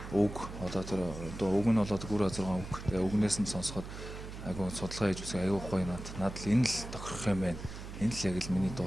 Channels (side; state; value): right; noise; hum, 10 dB below the sound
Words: үг одоо тэр үг нь болоод гүр 6 үг. Тэгээ үгнээс нь сонсоход айгүй судалгаа хийж үзэх айгүй гоё надад л энэ л тохирох юм байна. Энэ л яг л миний